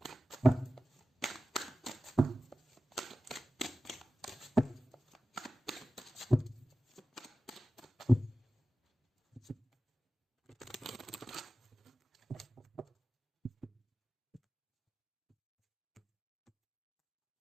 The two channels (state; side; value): normal; both; correlation 0.95